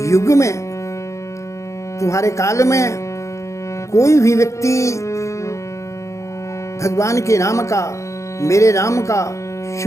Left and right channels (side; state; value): right; late; 0.15 ms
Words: युग में, तुम्हारे काल में कोई भी व्यक्ति भगवान के नाम का, मेरे नाम का